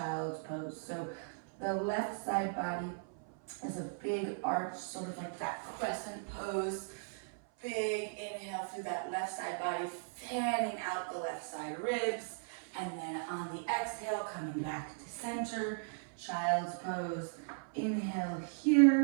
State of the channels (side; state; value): left; silent; 53 dB below the other